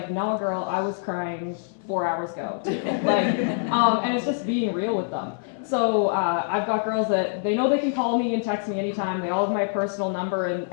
no, girl, I was crying 4 hours ago too. And it's just being real with them. So I've got girls that they know they can call me and text me anytime. They all have my personal number,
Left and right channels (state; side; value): silent; right; 62 dB below the other